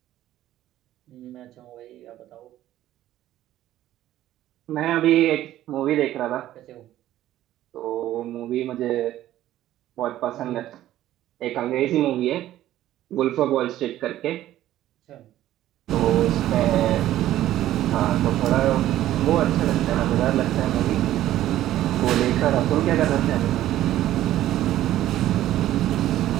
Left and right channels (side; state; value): left; quieter; 13.5 dB